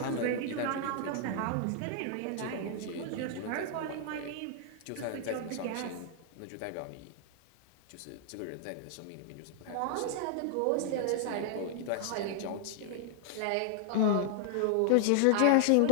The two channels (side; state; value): both; different; correlation 0.00